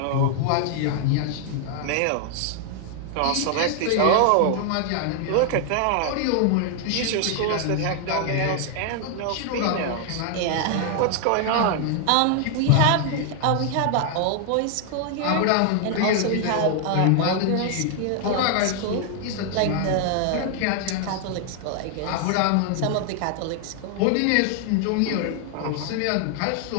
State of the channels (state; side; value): different; both; correlation 0.00